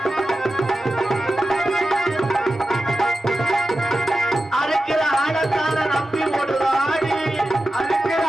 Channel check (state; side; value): normal; both; correlation 0.93